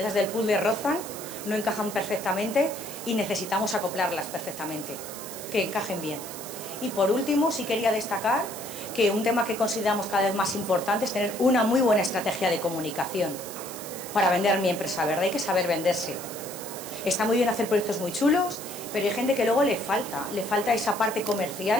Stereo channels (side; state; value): right; noise; hiss, 11 dB below the sound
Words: del puzzle rozan, no encajan perfectamente y necesitamos acoplarlas perfectamente, que encajen bien. Y por último, sí quería destacar que un tema que consideramos cada vez más importante es tener una muy buena estrategia de comunicación para vender mi empresa verde. Hay que saber venderse. Está muy bien hacer proyectos muy chulos, pero hay gente que luego le falta esa parte